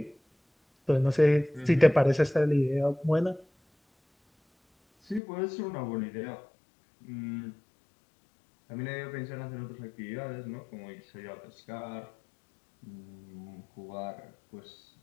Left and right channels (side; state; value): right; drops out; at 5.2 s